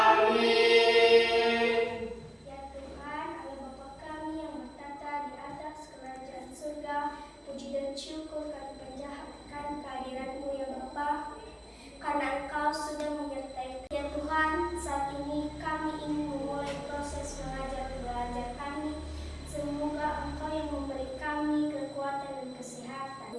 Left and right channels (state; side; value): identical; both; correlation 1.00